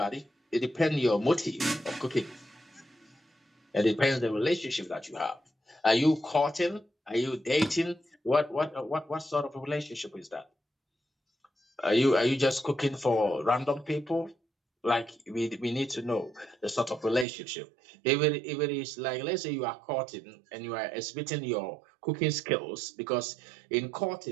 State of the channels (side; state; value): left; drops out; at 17.2 s